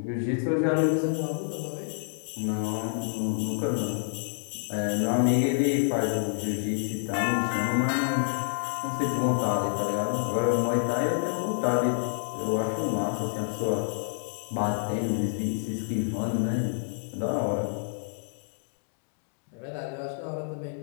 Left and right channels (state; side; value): silent; right; digital silence